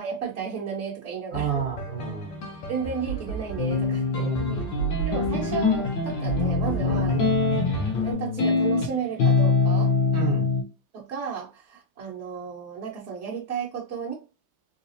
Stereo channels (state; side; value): normal; both; correlation -0.04